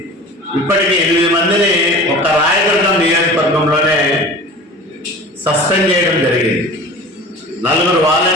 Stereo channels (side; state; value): both; normal; correlation 0.39